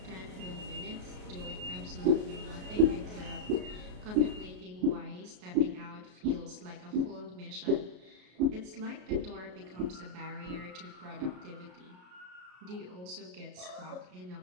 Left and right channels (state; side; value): late; left; 33 ms